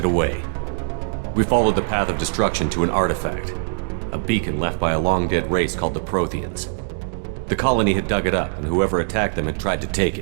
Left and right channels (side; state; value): left; silent; digital silence